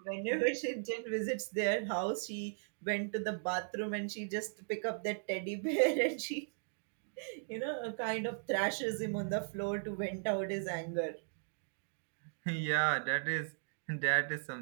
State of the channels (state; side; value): silent; left; digital silence